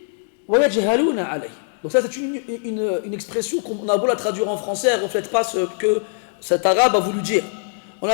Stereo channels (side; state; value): right; silent; digital silence